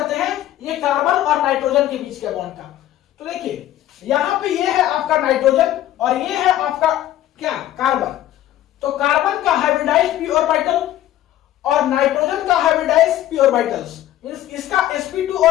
हैं ये कार्बन और नाइट्रोजन के बीच के बॉन्ड का। तो देखिए यहाँ पे ये है आपका नाइट्रोजन और ये है आपका क्या, कार्बन। तो कार्बन का हाइब्रिडाइज्ड p ऑर्बिटल और नाइट्रोजन का हाइब्रिडाइज्ड p ऑर्बिटल्स, मींस इसका sp2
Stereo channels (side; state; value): right; quieter; 13.1 dB